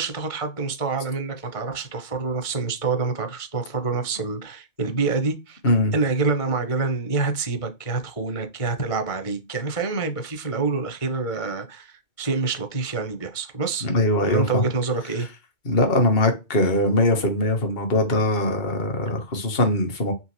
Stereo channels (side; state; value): right; late; 2.2 ms